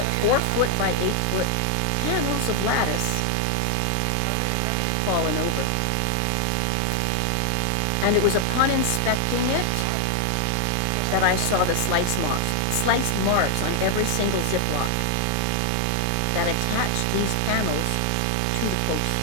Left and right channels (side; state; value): both; different; correlation 0.00